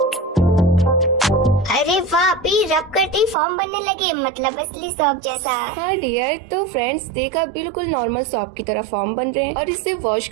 अरे वाह भी, रब करते ही फॉर्म बनने लगे, मतलब असली सॉप जैसा। हाँ डियर, तो फ्रेंड्स देखा बिल्कुल नॉर्मल सॉप की तरह फॉर्म बन रहे हैं। और इसे वॉश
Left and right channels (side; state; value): left; drops out; at 3.4 s